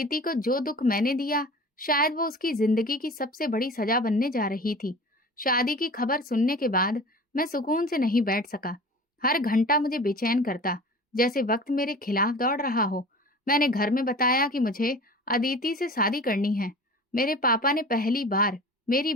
को जो दुख मैंने दिया, शायद वो उसकी जिंदगी की सबसे बड़ी सजा बनने जा रही थी। शादी की खबर सुनने के बाद मैं सुकून से नहीं बैठ सका। हर घंटा मुझे बेचैन करता, जैसे वक्त मेरे खिलाफ दौड़ रहा हो। मैंने घर में बताया कि मुझे अदिति से शादी करनी है। मेरे पापा ने पहली बार मेरी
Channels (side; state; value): both; normal; correlation 0.39